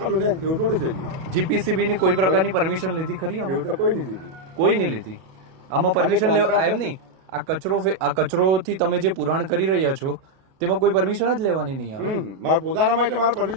ને એવું થોડું છે. જીપીસીબી ની કોઈ પ્રકારની પરમિશન લીધી ખરી? એવું તો કોઈ નહીં લીધી. કોઈ નહીં લીધી. આમાં પરમિશન લેવા એમ નહીં. આ કચરોથી તમે જે પુરાણ કરી રહ્યા છો તેમાં કોઈ પરમિશન જ લેવાની નહીં આવે. મારા પોતાનામાં એટલે મારે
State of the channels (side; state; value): left; late; 37 ms